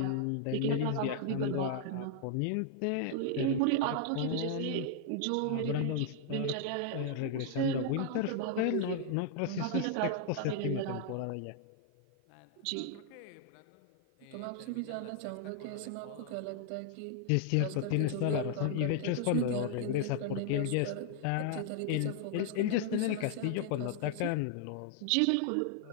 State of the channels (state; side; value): different; both; correlation 0.00